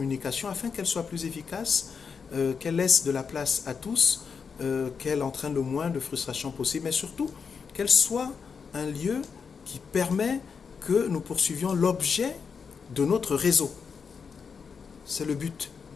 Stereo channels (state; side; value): quieter; right; 5.9 dB